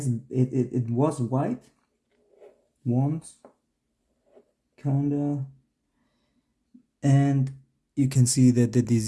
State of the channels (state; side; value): identical; both; correlation 1.00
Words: was white, once, kinda, and you can see that the